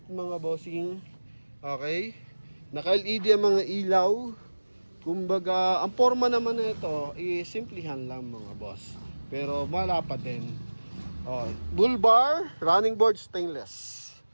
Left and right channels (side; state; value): both; inverted; correlation -1.00